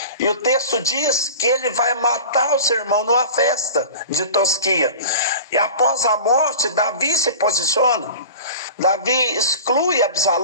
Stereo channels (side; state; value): both; inverted; correlation -0.37